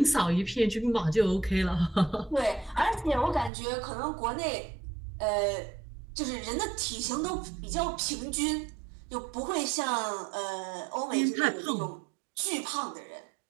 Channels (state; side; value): drops out; left; at 3.5 s